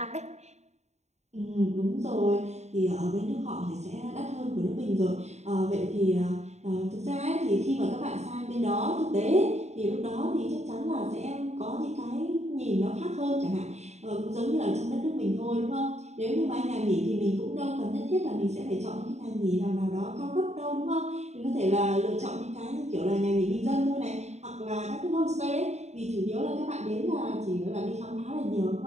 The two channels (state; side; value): late; left; 0.32 ms